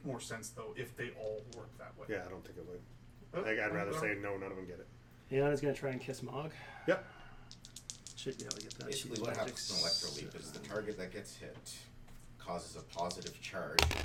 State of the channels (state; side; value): identical; both; correlation 1.00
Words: more sense though if they all worked that way. Yeah, I don't think it would. But, I'd rather but- say no, none of them get it. Iana's gonna try and kiss Mulg. Yep. Should be able to get that. Basically, She's what magic happens in Electroleap is the 7. target that gets hit causes a positive charge